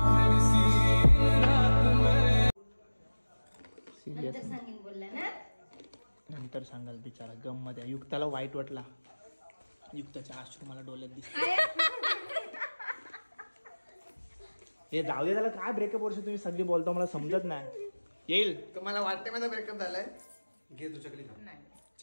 नंतर सांगेन बोलला ना. नंतर सांगाल बिचारा. गम मध्ये युक्ताला वाईट वाटला. युक्ताच्या अश्रू मला डोळ्यात दिसत. हे जाऊ दे त्याला. काय ब्रेकअप वर्ष तुम्ही सगळी बोलता मला समजत नाही. येईल तुम्हाला वाटते माझा ब्रेकअप झालाय. घे तू चकली खा.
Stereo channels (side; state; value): both; inverted; correlation -1.00